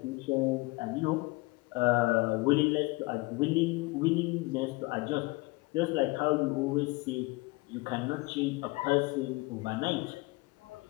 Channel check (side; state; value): right; quieter; 23.9 dB